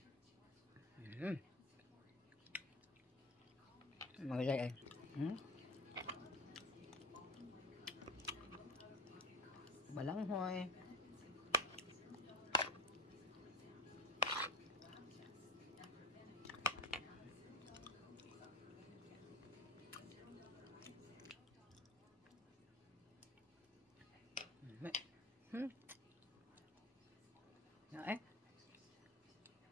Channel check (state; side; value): normal; both; correlation 0.28